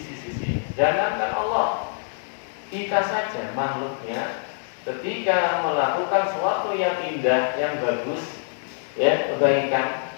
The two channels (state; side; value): silent; right; digital silence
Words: Jangankan Allah, kita saja makhluknya ketika melakukan sesuatu yang indah, yang bagus, ya, kebaikan,